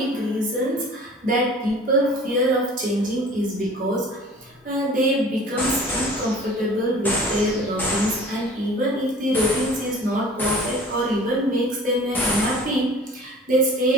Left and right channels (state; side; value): normal; both; correlation 0.45